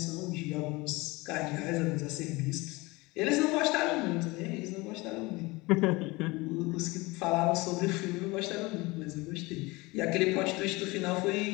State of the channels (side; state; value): right; quieter; 23.2 dB